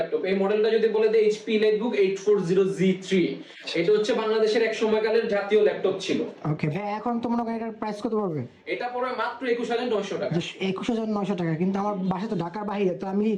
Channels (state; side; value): identical; both; correlation 1.00